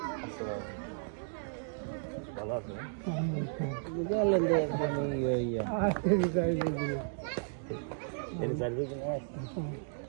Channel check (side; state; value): left; silent; digital silence